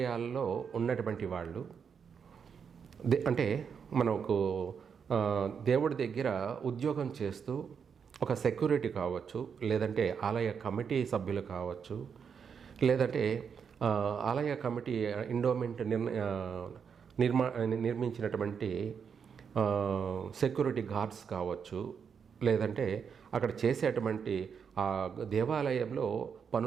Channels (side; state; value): left; quieter; 6.7 dB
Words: ఉన్నటువంటి వాళ్ళు అంటే మనకు దేవుడి దగ్గర ఉద్యోగం చేస్తూ ఒక సెక్యూరిటీ కావచ్చు, లేదంటే ఆలయ కమిటీ సభ్యులు కావచ్చు, లేదంటే ఆలయ కమిటీ ఎండోమెంట్ నిర్మించినటువంటి సెక్యూరిటీ గార్డ్స్ కావచ్చు, లేదంటే అక్కడ చేసేటువంటి ఆ దేవాలయంలో